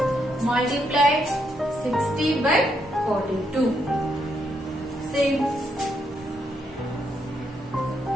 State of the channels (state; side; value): normal; both; correlation 0.77